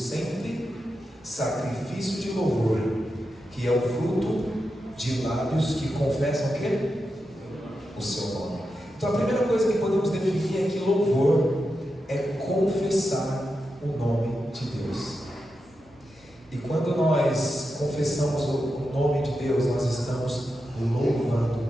sacrifício de louvor, que é o fruto de lábios que confessam o quê? O seu nome. Então a primeira coisa que podemos definir é que louvor é confessar o nome de Deus. E quando nós confessamos o nome de Deus, nós estamos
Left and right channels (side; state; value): both; normal; correlation 0.89